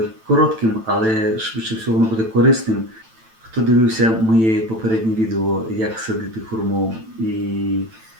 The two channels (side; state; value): left; late; 9.0 ms